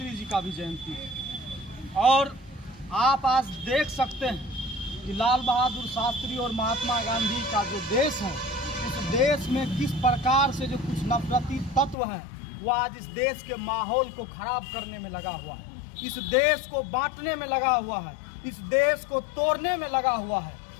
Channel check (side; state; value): right; drops out; at 12.0 s